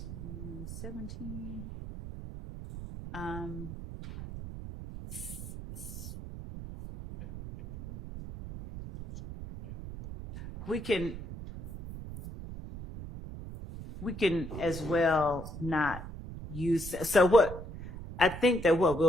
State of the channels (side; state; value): right; noise; rumble, 9 dB below the sound